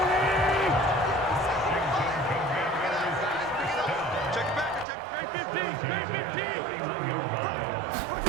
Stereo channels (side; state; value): left; drops out; at 4.9 s